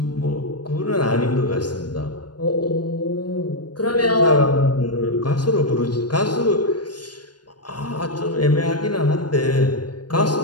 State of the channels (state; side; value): late; right; 0.70 ms